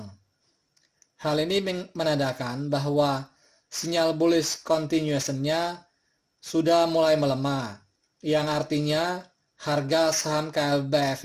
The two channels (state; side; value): identical; both; correlation 1.00